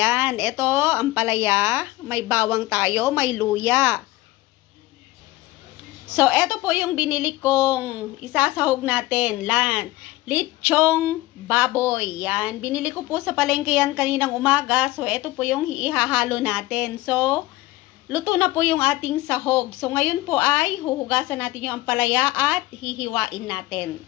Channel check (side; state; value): right; quieter; 18.5 dB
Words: ito ampalaya, may bawang tayo, may luya. So, ito po yung binili kong isasahog natin. Lechong baboy. Yan. Binili ko po sa palengke yan kaninang umaga. So, ito po yung ihahalo natin. So, luto na po yung ating sahog. So, ngayon po ay huhugasan natin yung ampalaya at hihiwain natin.